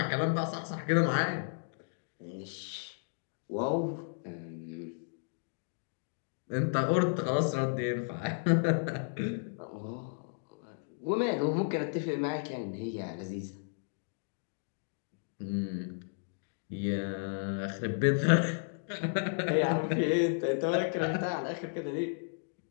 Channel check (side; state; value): right; silent; digital silence